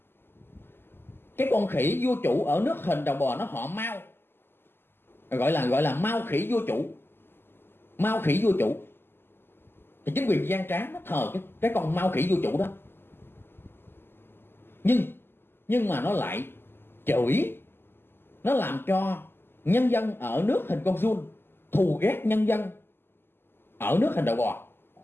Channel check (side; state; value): right; late; 0.11 ms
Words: Cái con khỉ vua chủ ở nước hình đầu bò nó họ Mao, gọi là Mao khỉ vua chủ, Mao khỉ vua chủ. Thì chính quyền gian trá nó thờ cái con Mao khỉ vua chủ đó. Nhưng mà nó lại chửi, nó làm cho nhân dân ở nước hình con giun thù ghét nhân dân ở nước hình đầu bò.